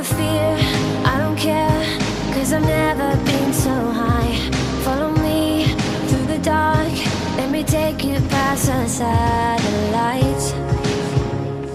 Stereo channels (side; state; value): both; identical; correlation 1.00